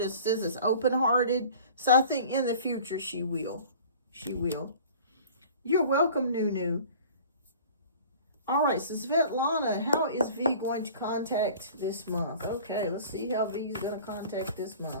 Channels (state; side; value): inverted; both; correlation -0.45